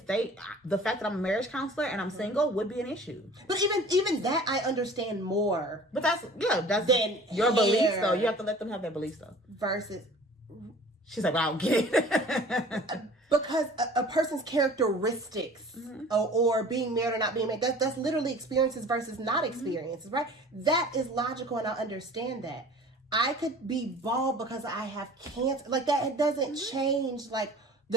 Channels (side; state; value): both; normal; correlation 0.45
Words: the fact that I'm a marriage counselor and I'm single would be an issue. But even that, I understand more. But that's then your beliefs though. You have to let them have their beliefs though. Versus, she's like, well, I don't get it. Because a person's characteristics or being married or not being married, that's literally experiences versus not experiences, right? That is logical, and I understand that. I could be bald because I have cancer. Like that, it doesn't change like